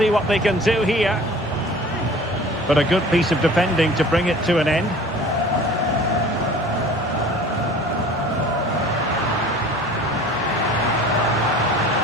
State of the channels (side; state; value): both; normal; correlation 0.45